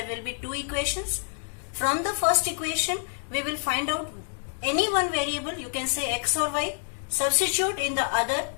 will be two equations. From the first equation, we will find out any one variable, you can say x or y, substitute in the other,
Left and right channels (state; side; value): silent; right; 60 dB below the other